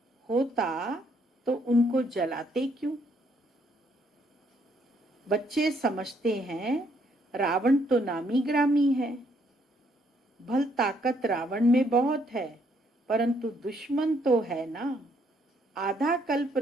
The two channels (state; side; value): normal; both; correlation 0.69